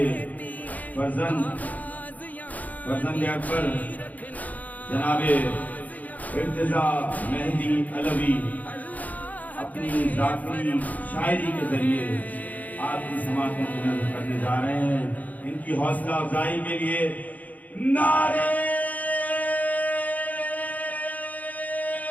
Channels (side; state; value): right; late; 0.078 ms